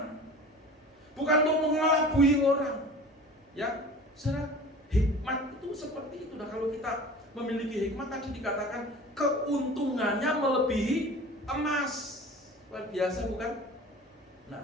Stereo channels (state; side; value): normal; both; correlation 0.40